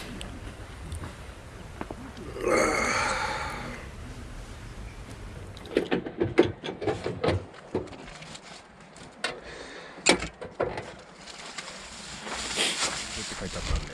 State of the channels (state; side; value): identical; both; correlation 1.00